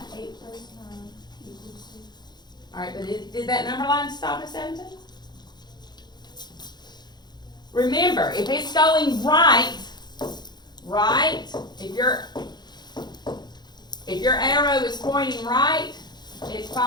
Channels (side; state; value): right; late; 0.21 ms